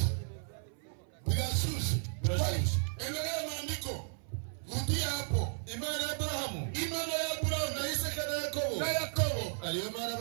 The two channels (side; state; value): left; silent; 55 dB below the other